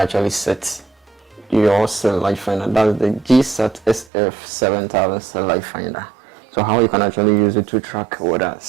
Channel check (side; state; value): left; drops out; at 4.1 s